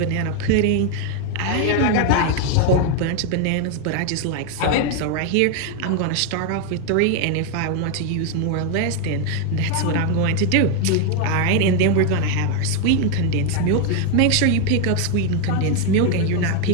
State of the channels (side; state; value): both; different; correlation 0.01